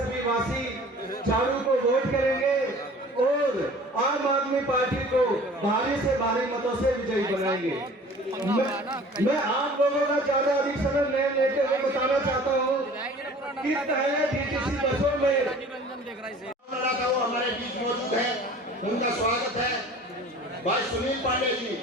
वासी झाड़ू को वोट करेंगे और आम आदमी पार्टी को भारी से भारी मतों से विजयी बनाएंगे। मैं आप लोगों का ज्यादा अधिक समय नहीं लेते हुए बताना चाहता हूँ कि पहले डीटीसी बसों में हमारे बीच मौजूद है, उनका स्वागत है। भाई सुनील पांडे जी,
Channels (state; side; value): normal; both; correlation 0.46